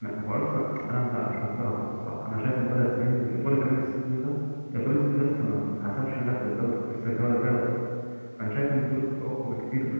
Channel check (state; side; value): inverted; both; correlation -1.00